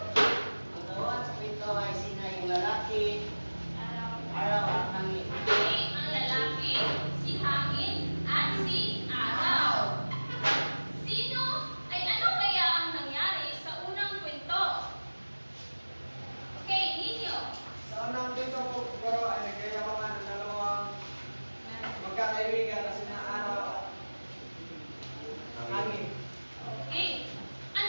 Ang tawag sa pinto ay sina yung lalaki, araw at hangin. Okay, ang lalaki, si hangin, at si araw. Sino ay ano kaya ang nangyari sa unang kwento? Okay, ninyo. Sa unang dito po, pero ay nagkayabangan ng dalawang magkakaibigan na sina araw at hangin. Okay.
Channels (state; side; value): inverted; both; correlation -1.00